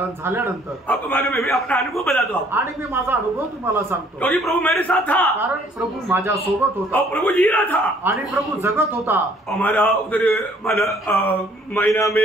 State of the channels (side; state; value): both; normal; correlation 0.60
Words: झाल्यानंतर आपको मालूम है, मैं अपना अनुभव बताता हूँ. आणि मी माझा अनुभव तुम्हाला सांगतो. क्योंकि प्रभु मेरे साथ था, कारण प्रभु माझ्या सोबत होता और प्रभु जी रहा था, आणि प्रभु जगत होता. हमारा उधर महीना